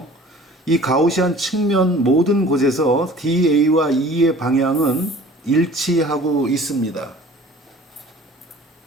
이 가우시안 측면 모든 곳에서 DA와 E의 방향은 일치하고 있습니다.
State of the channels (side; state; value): both; normal; correlation 0.47